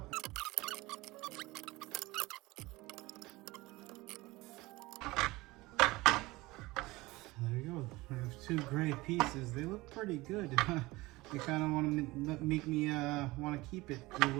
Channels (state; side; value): quieter; left; 20.8 dB